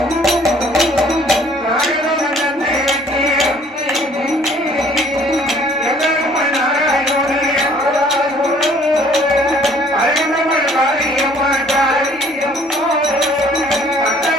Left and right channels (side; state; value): both; normal; correlation 0.58